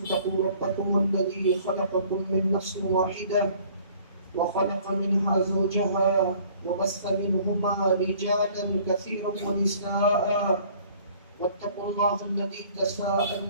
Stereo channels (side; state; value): both; inverted; correlation -0.55